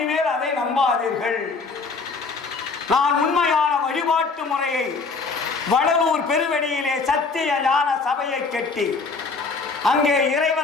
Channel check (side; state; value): right; quieter; 4.4 dB